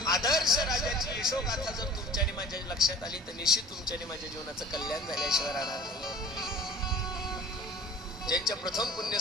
आदर्श राजाची यशोगाथा जर तुमच्या आणि माझ्या लक्षात आली तर निश्चित तुमच्या आणि माझ्या जीवनाचं कल्याण झाल्याशिवाय राहणार नाही. ज्यांच्या प्रथम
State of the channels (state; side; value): normal; both; correlation 0.44